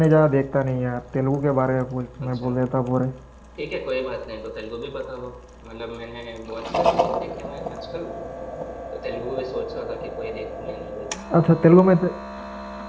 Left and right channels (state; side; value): identical; both; correlation 1.00